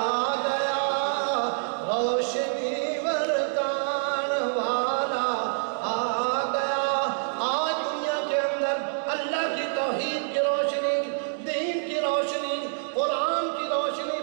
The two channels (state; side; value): silent; left; digital silence